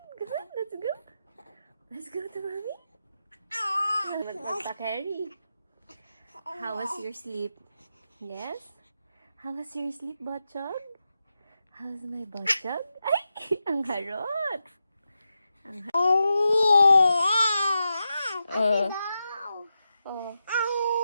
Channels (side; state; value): both; inverted; correlation -0.88